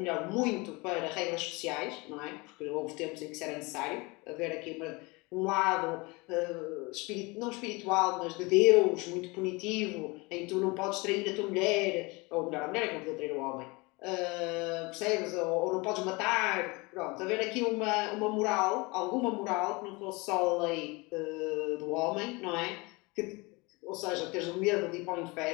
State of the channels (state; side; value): quieter; right; 25.8 dB